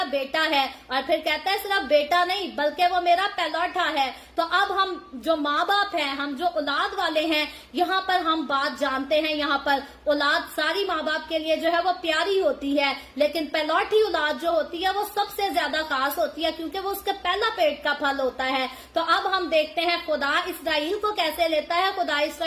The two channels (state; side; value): identical; both; correlation 1.00